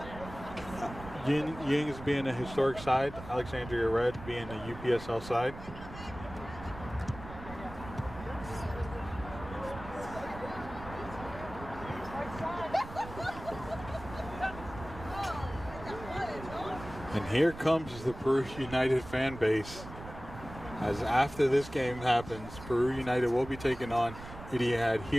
Yings being a historic side, Alexandria Red being a UPSL side. And here comes the Peru United fan base. As after this game happens, Peru United will be taking on Etihad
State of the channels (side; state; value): right; noise; rumble, 13 dB below the sound